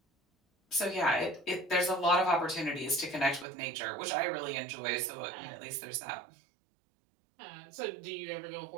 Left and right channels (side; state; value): left; drops out; at 3.5 s